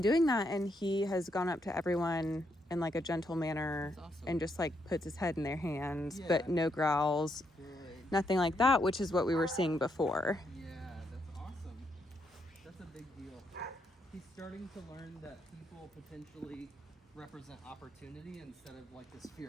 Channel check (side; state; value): both; normal; correlation 0.78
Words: doing that, and he has gone up to everyone in like a gentle manner and just like puts his head in their hands, but no growls, nothing like that, which is what we were seeing before. Yeah, that's awesome. That's a big deal. He's starting to learn that people potentially represent opportunity instead of like this